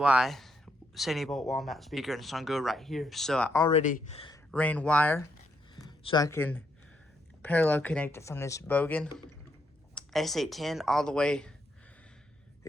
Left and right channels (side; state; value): both; normal; correlation 0.77